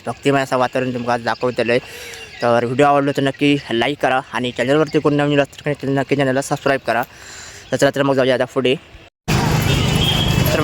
भक्तिमय असं वातावरण तुमका दाखवतलं। तर व्हिडिओ आवडलो तर नक्की लाईक करा आणि चॅनलवरती कोण नवीन असतं तर नक्की चॅनलला सबस्क्राईब करा। तर चला तर मग जाऊया आता पुढे। तर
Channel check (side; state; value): both; identical; correlation 1.00